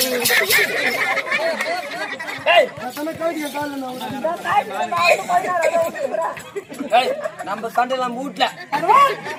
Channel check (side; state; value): both; identical; correlation 1.00